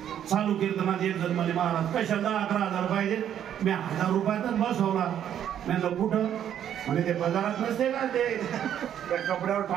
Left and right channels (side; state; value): left; quieter; 10.0 dB